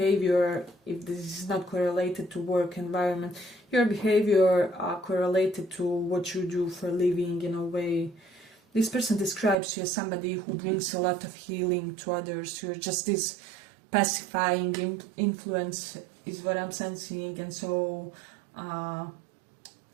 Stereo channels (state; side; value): drops out; left; at 9.6 s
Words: If this is not correlated to work environment, your behavior correlated to what you do for a living, in a way. This person describes you as somebody who brings a lot of healing to others. You're just this pacifying influence is what I'm sensing. And so